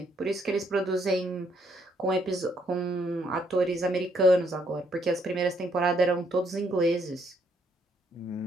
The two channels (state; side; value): normal; both; correlation 0.71